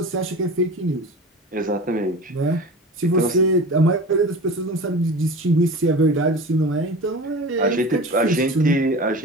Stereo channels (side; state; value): both; normal; correlation 0.34